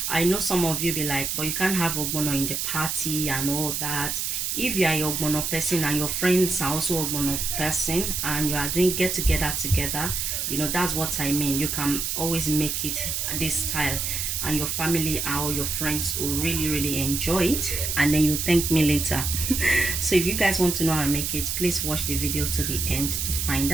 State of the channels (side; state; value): right; noise; hiss, 1 dB below the sound